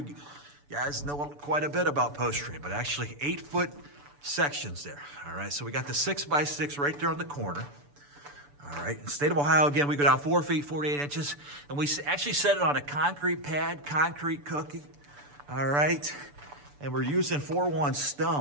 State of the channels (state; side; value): late; left; 6.9 ms